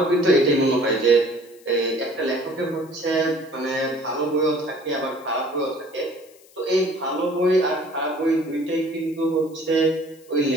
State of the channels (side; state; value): left; noise; hiss, 27 dB below the sound